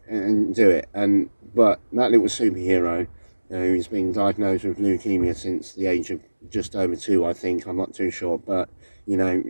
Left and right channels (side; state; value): both; inverted; correlation -1.00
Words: and do it. And but that little superhero, who's been diagnosed with leukemia since the age of just over 2, I think. I'm not too sure, but you know,